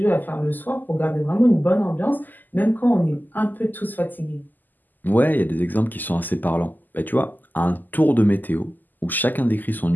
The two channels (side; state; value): right; late; 0.086 ms